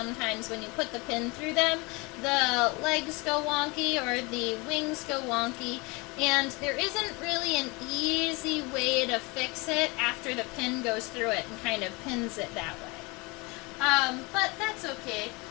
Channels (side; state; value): right; quieter; 26.6 dB